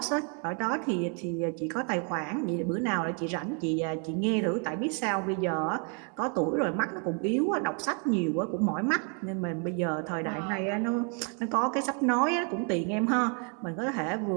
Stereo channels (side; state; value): left; quieter; 39.1 dB